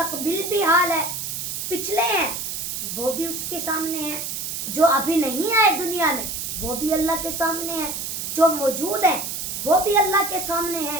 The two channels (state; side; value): noise; right; hiss, 4 dB below the sound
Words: भी हाल है, पिछले हैं वो भी उसके सामने है, जो अभी नहीं आए दुनिया में वो भी अल्लाह के सामने है, जो मौजूद है वो भी अल्लाह के सामने